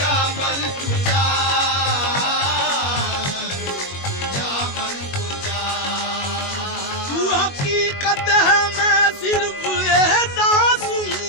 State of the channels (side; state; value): right; late; 21 ms